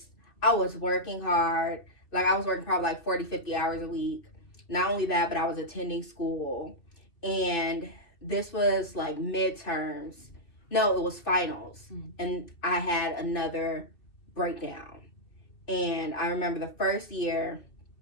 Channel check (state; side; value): late; right; 2.7 ms